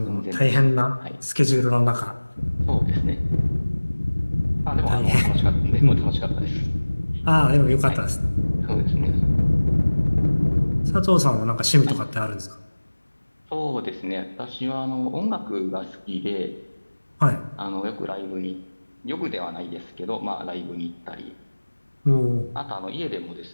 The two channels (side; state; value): both; inverted; correlation -1.00